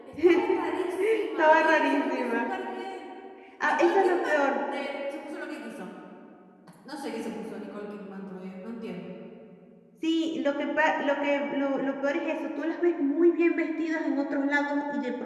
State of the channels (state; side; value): identical; both; correlation 1.00